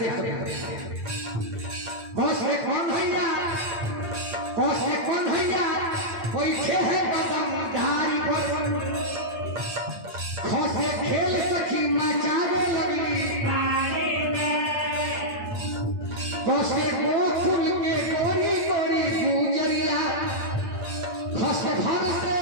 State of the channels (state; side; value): late; left; 8.8 ms